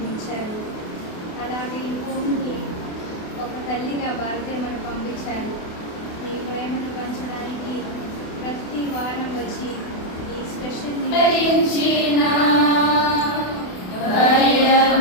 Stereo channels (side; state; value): right; late; 28 ms